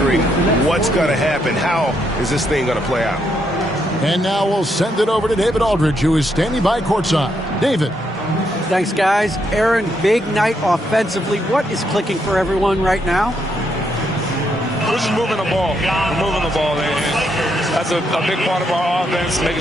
what's gonna happen. How is this thing gonna play out? And now we'll send it over to David Aldridge, who is standing by courtside. David. Thanks, guys. Aaron, big night offensively. What is clicking for everyone right now? We're just moving the ball. We're moving the ball. And that's a big part of our offense, making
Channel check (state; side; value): normal; both; correlation 0.77